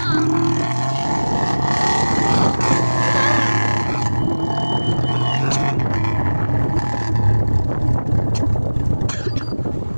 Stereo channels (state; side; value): inverted; both; correlation -1.00